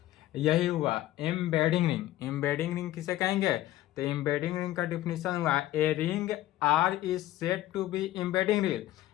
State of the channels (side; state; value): right; quieter; 14.9 dB